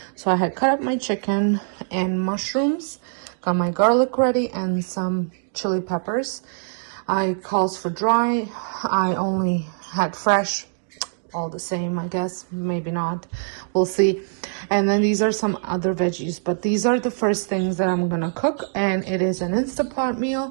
So I had cut up my chicken and mushrooms, got my garlic ready and some chili peppers. I calls for dry. I only had fresh. All the same, I guess. Maybe not. We'll see. And then these are some other veggies, but these are the first things that I'm gonna cook, and it is an Instant Pot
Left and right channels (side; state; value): left; silent; digital silence